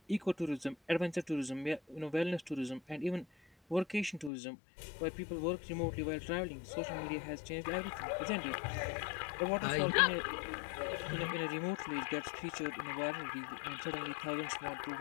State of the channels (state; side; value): drops out; right; at 4.3 s